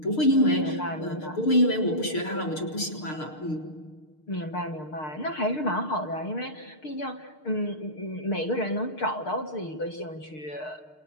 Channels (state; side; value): late; right; 6.6 ms